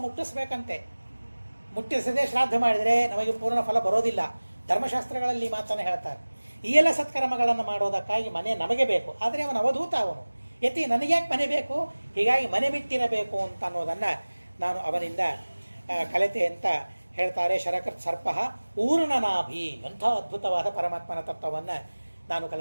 ಮುಟ್ಟಿಸ್ಬೇಕಂತೆ. ಮುಟ್ಟಿಸದೆ ಶ್ರಾದ್ದ ಮಾಡಿದರೆ ನಮಗೆ ಪೂರ್ಣ ಫಲ ಬರೋದಿಲ್ಲ. ಧರ್ಮಶಾಸ್ತ್ರಗಳಲ್ಲಿ ಮಾತನ್ನು ಹೇಳ್ತಾರೆ. ಈ ಎಲ್ಲ ಸತ್ಕರ್ಮಗಳನ್ನು ಮಾಡೋದಕ್ಕಾಗಿ ಮನೆ ನಮಗೆ ಬೇಕು, ಆದರೆ ಅವನು ಅವಧೂತ, ಅವನು ಯತಿ, ನನಗ್ಯಾಕೆ ಮನೆ ಬೇಕು, ಹೀಗಾಗಿ ಮನೆ ಬಿಟ್ಟಿರಬೇಕು ಅಂತ ಅನ್ನೋದನ್ನು ನಾನು ಅವನಿಂದ ಕಲಿತೆ ಅಂತ ಹೇಳ್ತಾರೆ. ಶರಕೃತ್ ಸರ್ಪ ಊರ್ಣನಾಭಿ, ಎಂಥ ಅದ್ಭುತವಾದ ಪರಮಾತ್ಮನ ತತ್ವವನ್ನು ನಾನು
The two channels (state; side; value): inverted; both; correlation -1.00